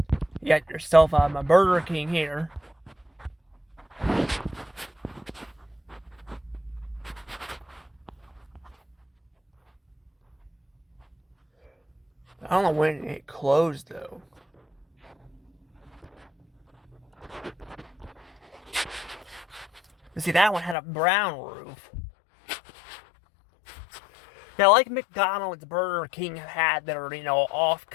You got yourself a Burger King here. I don't know when it closed though. See, that one had a brown roof. Yeah, like McDonald's, Burger King had their,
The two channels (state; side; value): drops out; right; at 20.8 s